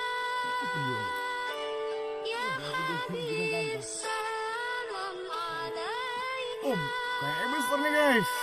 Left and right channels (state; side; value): identical; both; correlation 1.00